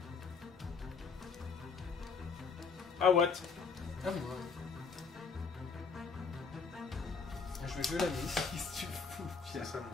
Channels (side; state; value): right; quieter; 5.1 dB